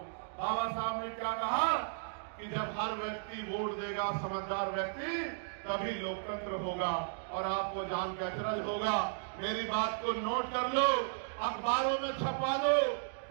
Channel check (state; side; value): silent; left; digital silence